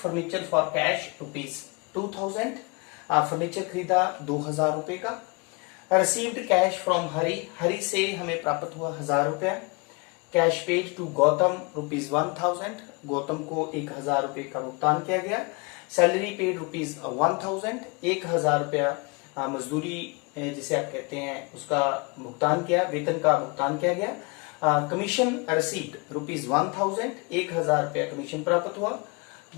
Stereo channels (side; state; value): right; quieter; 30.7 dB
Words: for cash ₹2,000, furniture खरीदा 2,000 रुपए का। रिसीव्ड कैश फ्रॉम हरी से हमें प्राप्त हुआ 1,000 रुपया। Cash paid to Gautam ₹1,000, Gautam को 1,000 रुपए का भुगतान किया गया। सैलरी पेड ₹1,000, 1,000 रुपया मजदूरी जिसे आप कहते हैं उसका भुगतान किया, वेतन का भुगतान किया गया। कमीशन रिसीव्ड ₹1,000, 1,000 रुपया कमीशन प्राप्त हुआ।